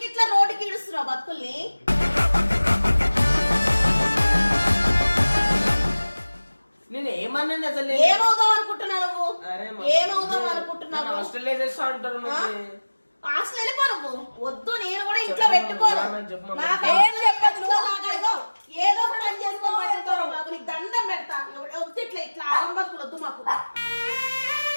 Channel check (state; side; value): inverted; both; correlation -1.00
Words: ఇట్లా రోడ్డుకి ఇడుస్తున్నావు బతుకుల్ని? నేను ఏమన్నాను అసలు? ఏమవుదాం అనుకుంటున్నావు నువ్వు? ఏమవుదాం అనుకుంటున్నావు? హాస్టల్ వేసేస్తా అంటారు. హాస్టల్ వెళ్ళిపో నువ్వు. వద్దు, నేను కూడా ఇంట్లో పెట్టుకోను. ఏదో ఒక పని చేసుకోవాలి బాబు. నీకు దండం పెడతా. వద్దు ఇట్లా ఇట్లా ఆరంభకులు వద్దు మాకు.